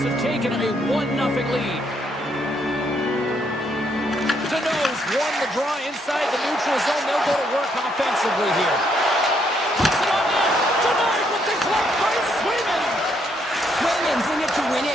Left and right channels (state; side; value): normal; both; correlation 0.73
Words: have taken a 1-0 lead. Deneau's won the draw inside the neutral zone. They'll go to work offensively here. Puts it on net. Denied with the glove by Swayman. Swayman's in it to win